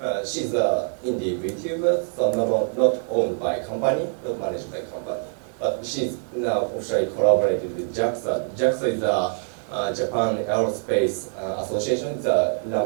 She's an indie VTuber, so not owned by company, not managed by company. But she's now officially collaborated with JAXA. JAXA is a Japan Aerospace Association. It's run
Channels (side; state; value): left; silent; digital silence